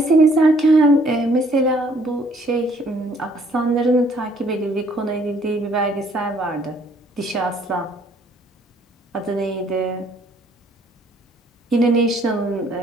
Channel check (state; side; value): normal; both; correlation 0.63